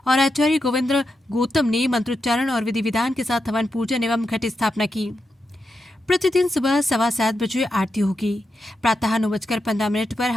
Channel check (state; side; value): normal; both; correlation 0.87